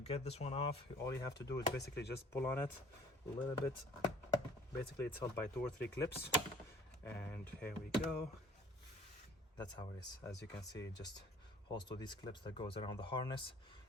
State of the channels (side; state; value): both; normal; correlation 0.53